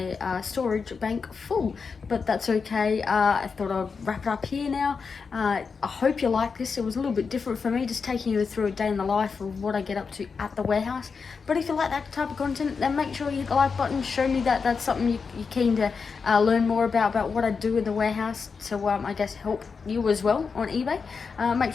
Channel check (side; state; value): right; quieter; 5.3 dB